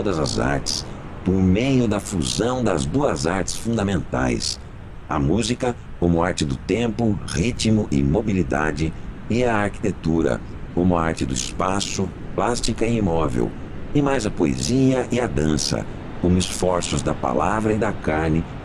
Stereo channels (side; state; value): both; identical; correlation 1.00